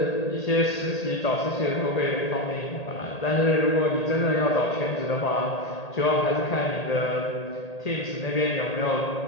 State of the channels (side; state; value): right; late; 1.8 ms